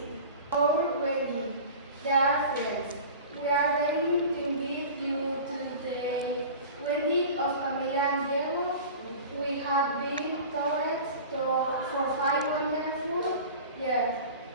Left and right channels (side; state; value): both; inverted; correlation -0.37